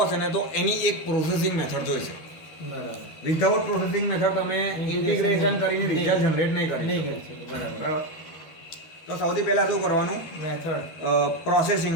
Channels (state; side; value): late; right; 13 ms